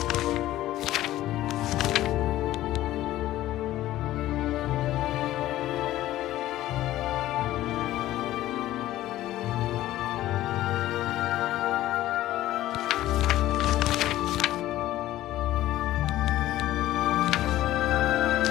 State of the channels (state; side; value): quieter; right; 14.7 dB